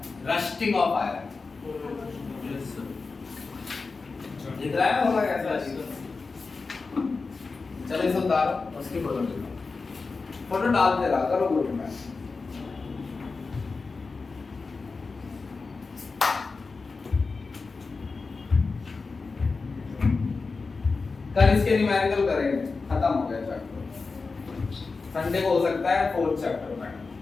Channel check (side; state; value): right; quieter; 4.2 dB